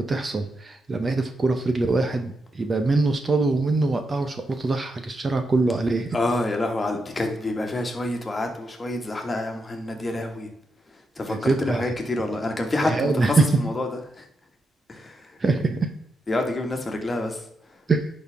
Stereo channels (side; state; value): both; normal; correlation 0.84